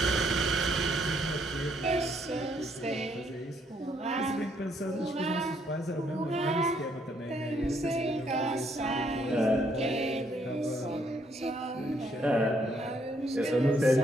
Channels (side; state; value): both; normal; correlation 0.70